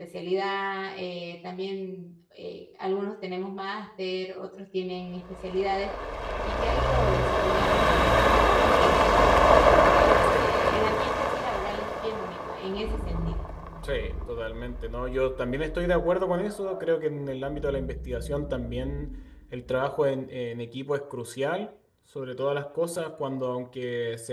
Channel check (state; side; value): identical; both; correlation 1.00